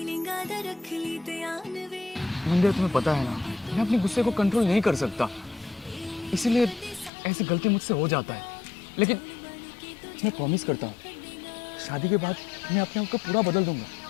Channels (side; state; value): right; drops out; at 7.1 s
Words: आधा रख ली ध्यान वे मंदिरा, तुम्हें पता है ना मैं अपने गुस्से को कंट्रोल नहीं कर सकता, इसीलिए ऐसी गलती मुझसे हो जाता है। लेकिन मैं प्रॉमिस करता हूँ शादी के बाद मैं अपने आप को पूरा बदल दूंगा।